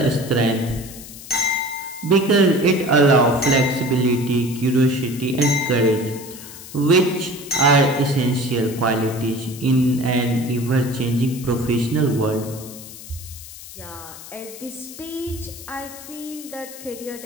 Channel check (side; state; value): left; noise; hiss, 15 dB below the sound